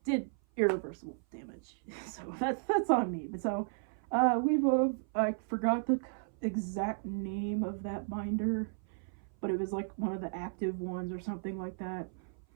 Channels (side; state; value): left; silent; 55 dB below the other